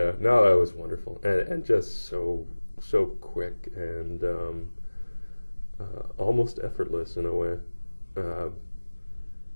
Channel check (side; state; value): both; inverted; correlation -1.00